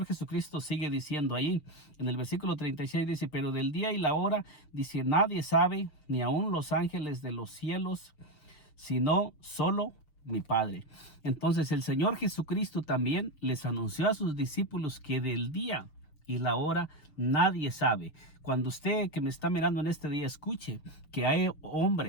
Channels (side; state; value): right; late; 6.7 ms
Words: Jesucristo sigue diciendo ahí en el versículo 36, dice, pero del día y la hora, dice, nadie sabe, ni aun los ángeles de los cielos, sino solo mi Padre. Entonces el Señor Jesucristo también les anunció a sus discípulos que del día y la hora nadie sabe. Cuando usted que me está mirando en este día escuche que hay